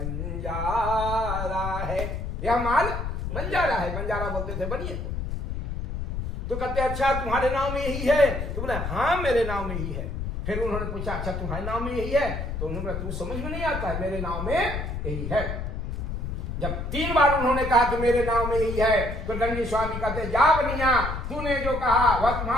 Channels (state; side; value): noise; left; rumble, 4 dB below the sound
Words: है। यह माल बंजारा है। बंजारा बोलते थे बनिए को। तो कहते अच्छा तुम्हारे नाम में यही है? तो बोले हाँ मेरे नाम में ही है। फिर उन्होंने पूछा अच्छा तुम्हारे नाम में यही है? तो उन्होंने तू समझ में नहीं आता है, मेरे नाम में यही है। जब 3 बार उन्होंने कहा कि मेरे नाम में यही है, तो दंडी स्वामी कहते जा बनिया, तूने जो कहा वह